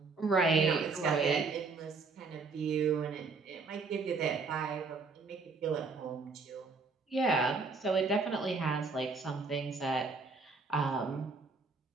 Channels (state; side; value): quieter; left; 4.3 dB